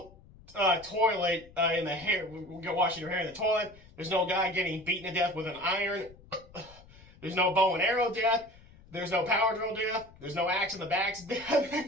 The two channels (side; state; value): left; noise; rumble, 23 dB below the sound